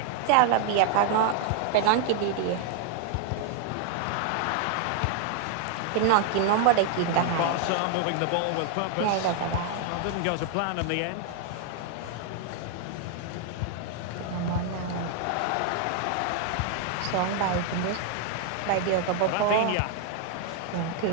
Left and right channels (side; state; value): both; different; correlation 0.00